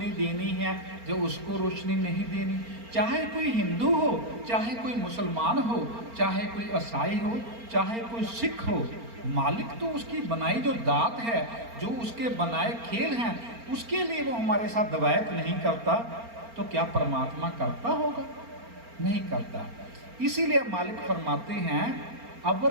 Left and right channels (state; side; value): late; left; 4.3 ms